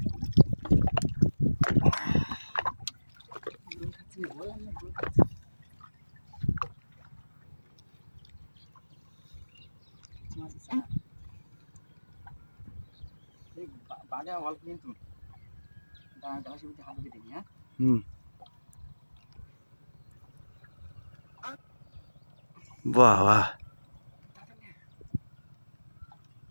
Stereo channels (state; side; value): inverted; both; correlation -1.00